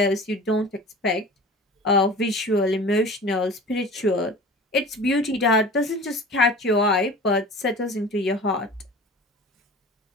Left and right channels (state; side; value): normal; both; correlation 0.39